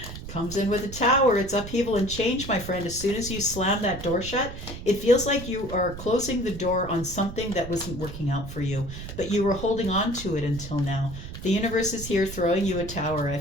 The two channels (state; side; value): noise; right; rumble, 10 dB below the sound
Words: Comes in with a Tower. It's upheaval and change, my friend. As soon as you slam that door shut, it feels like you are closing the door on something that wasn't working out for you, but you were holding on to it until now. The universe is here throwing you a Tower. I